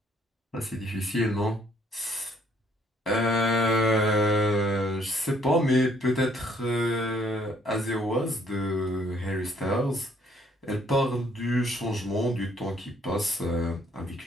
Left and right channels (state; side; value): normal; both; correlation 0.65